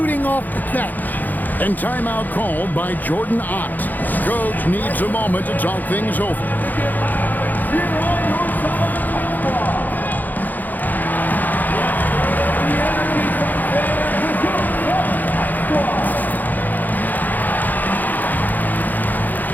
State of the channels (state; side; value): late; right; 0.084 ms